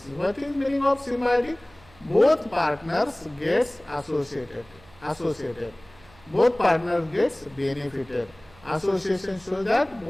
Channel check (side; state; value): right; noise; hum, 26 dB below the sound